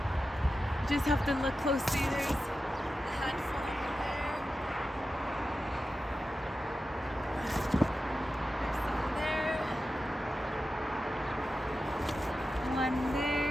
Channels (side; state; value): both; normal; correlation 0.92